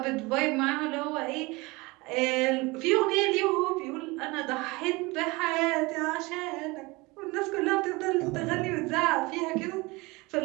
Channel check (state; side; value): quieter; left; 24.0 dB